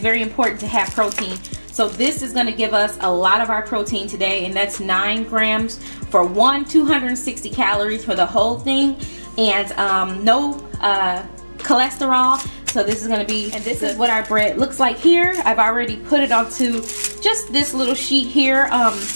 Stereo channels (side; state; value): both; inverted; correlation -1.00